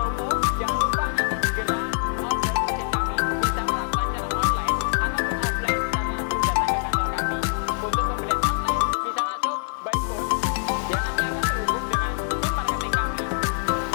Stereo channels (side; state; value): right; silent; digital silence